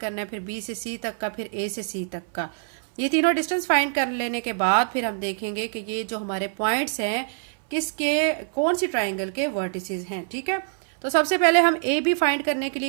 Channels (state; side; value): silent; left; 60 dB below the other